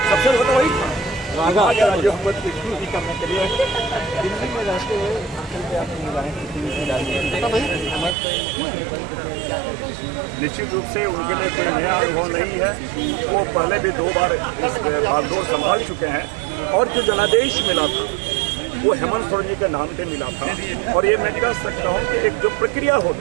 सबसे ज्यादा वही जो करने के लिए दिल्ली में रहते हुए निश्चित रूप से उनके लिए कोई नया अनुभव नहीं है। वो पहले भी 2 बार इस बागडोर संभाल चुके हैं, और जो जनादेश मिला था वो हेमंत सोरेन जी के नाम पे मिला था। और ये मैं कह सकता हूँ कि एक जो प्रक्रिया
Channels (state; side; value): drops out; left; at 8.2 s